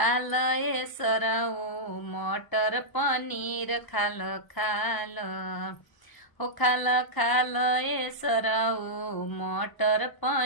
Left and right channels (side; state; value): right; late; 1.0 ms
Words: ए सरऊ मटर पनीर खाल खाल हो खाल खाल ए सरऊ मटर